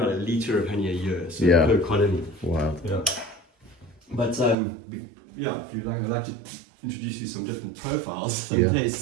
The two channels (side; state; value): left; drops out; at 4.5 s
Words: about a liter of honey a year, so per colony. Wow. Yeah. But yeah, if you'd like, I'd like to introduce you some different profiles in